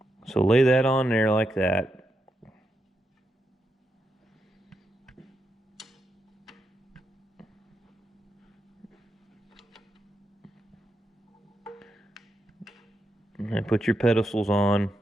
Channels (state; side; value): normal; both; correlation 0.84